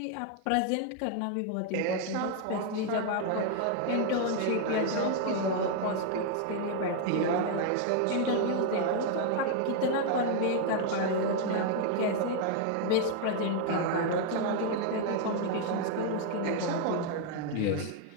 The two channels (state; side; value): different; both; correlation 0.00